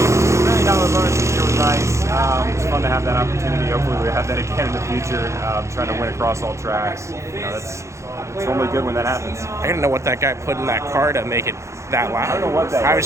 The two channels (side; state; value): left; late; 0.14 ms